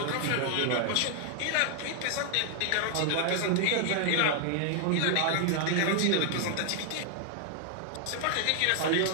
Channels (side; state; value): both; different; correlation 0.00